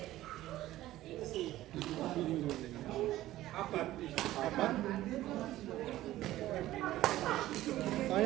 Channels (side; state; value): left; quieter; 15.1 dB